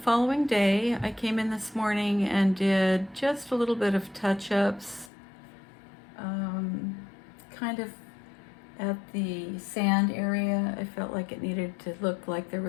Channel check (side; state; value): right; drops out; at 5.1 s